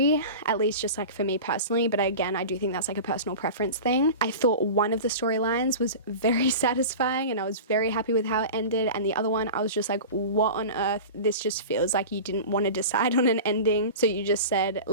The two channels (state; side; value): inverted; both; correlation -0.32